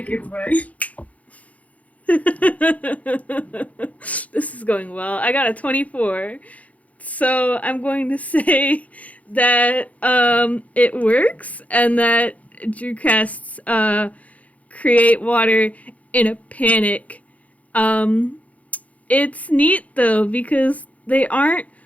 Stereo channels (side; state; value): right; late; 0.069 ms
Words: it right. This is going well. I got a 24. So I'm going to say that it works and that Drew casts create water in a panic. Um, it's neat though because they aren't